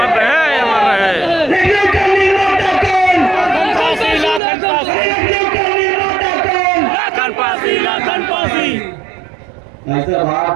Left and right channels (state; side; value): drops out; left; at 4.4 s